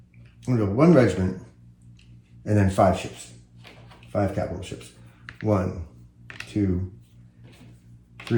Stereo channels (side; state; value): both; identical; correlation 1.00